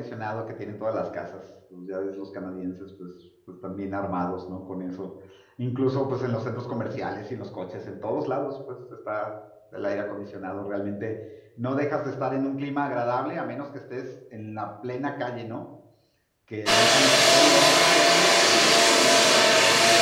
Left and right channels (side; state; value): both; identical; correlation 1.00